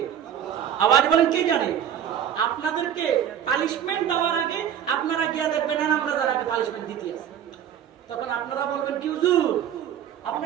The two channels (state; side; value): quieter; left; 9.5 dB